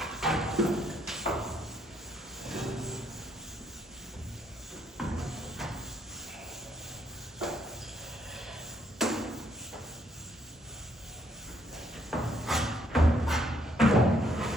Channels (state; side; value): normal; both; correlation 0.70